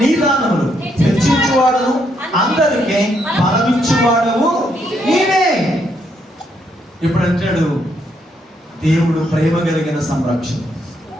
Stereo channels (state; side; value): normal; both; correlation 0.75